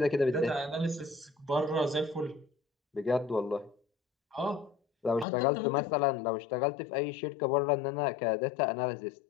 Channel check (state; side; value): drops out; right; at 5.2 s